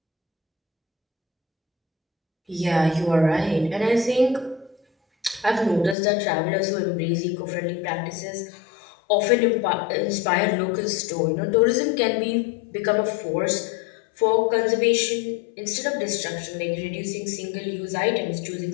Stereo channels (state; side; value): drops out; right; at 6.0 s